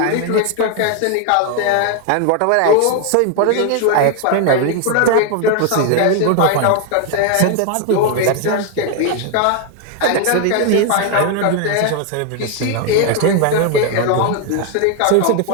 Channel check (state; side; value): different; both; correlation 0.01